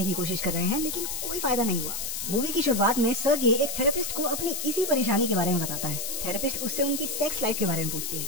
की कोशिश कर रहे हैं, लेकिन कोई फायदा नहीं हुआ। मूवी की शुरुआत में सर्गे एक थेरेपिस्ट को अपनी इसी परेशानी के बारे में बताता है। थेरेपिस्ट उससे उनकी सेक्स लाइफ के बारे में पूछती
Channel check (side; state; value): left; noise; hiss, 4 dB below the sound